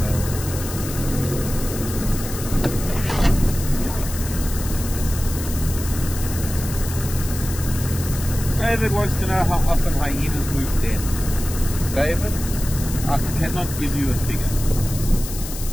David wants to know how often hyenas move dens. David, I cannot give you a figure.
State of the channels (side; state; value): left; noise; hiss, 10 dB below the sound